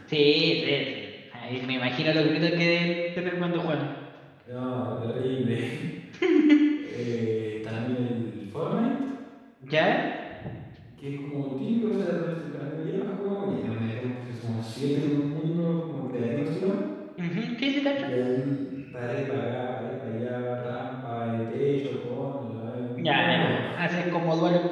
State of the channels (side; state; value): both; identical; correlation 1.00